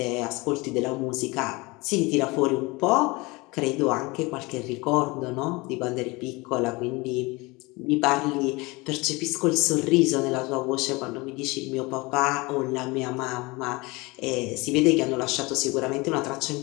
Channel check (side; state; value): right; quieter; 24.4 dB